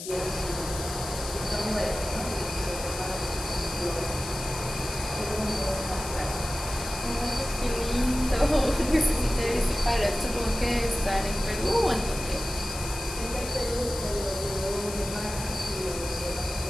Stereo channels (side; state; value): left; noise; hiss, 9 dB below the sound